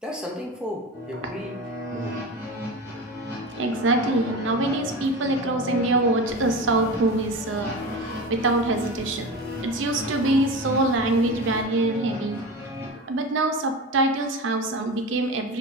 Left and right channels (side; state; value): both; normal; correlation 0.27